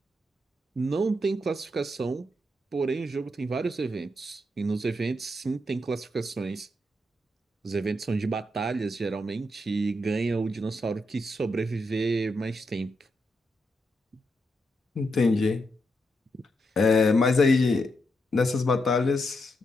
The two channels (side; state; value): both; normal; correlation 0.82